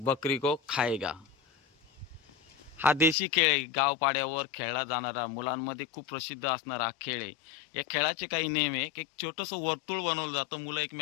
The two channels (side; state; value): right; drops out; at 3.2 s